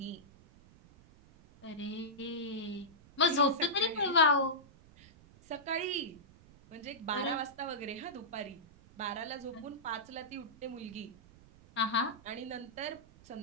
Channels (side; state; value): right; noise; rumble, 24 dB below the sound